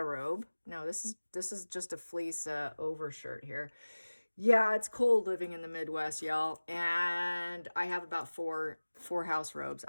robe. No, this is just a fleece overshirt here. Yeah, it's cold living in the Midwest, y'all. And I have about four house robes.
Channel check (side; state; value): both; inverted; correlation -1.00